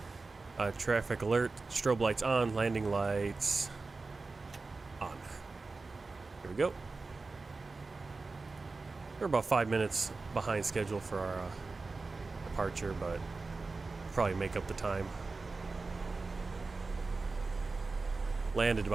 traffic alert, strobe lights on, landing lights on. Here we go. We're about 5 minutes behind schedule for our departure, but probably make up the time. Landed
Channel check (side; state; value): left; quieter; 3.8 dB